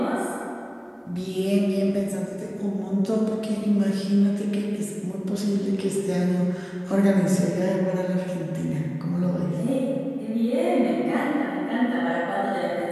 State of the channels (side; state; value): both; identical; correlation 1.00